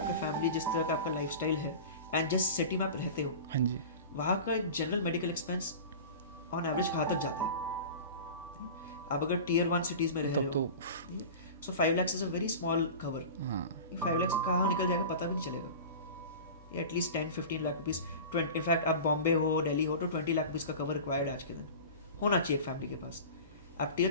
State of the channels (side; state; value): both; inverted; correlation -0.34